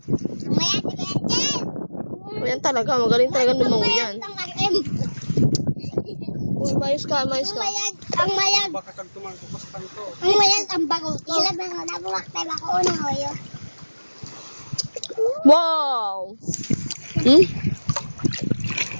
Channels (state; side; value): inverted; both; correlation -1.00